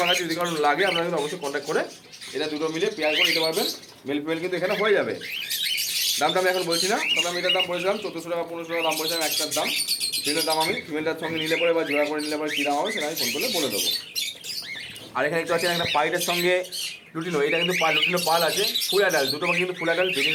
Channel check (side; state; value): both; identical; correlation 1.00